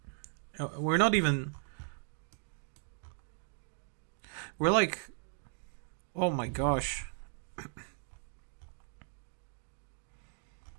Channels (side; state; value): left; silent; 53 dB below the other